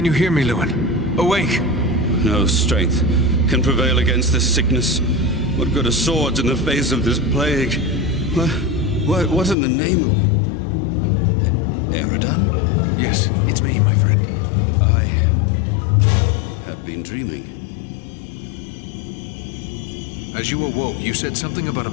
you hear me, Lewin? Awake! No strength can prevail against this sickness. What good are swords in the face of this plague? What in the name of... Eridan? Yes, it's me, my friend. I have been dreaming. As you awoke, you said something about a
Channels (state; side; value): drops out; right; at 9.6 s